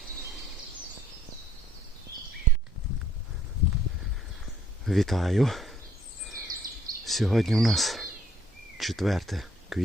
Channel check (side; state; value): both; normal; correlation 0.63